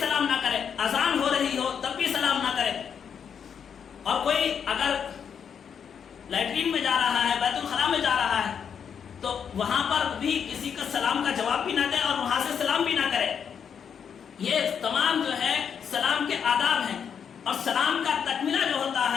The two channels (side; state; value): right; quieter; 7.4 dB